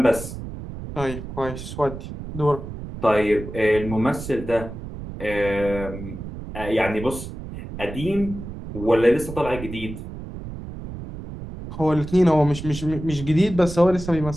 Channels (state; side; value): noise; right; rumble, 10 dB below the sound